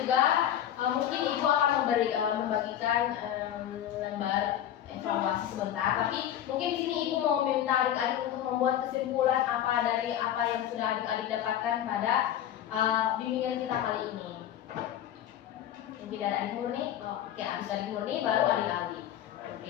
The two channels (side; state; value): right; quieter; 11.1 dB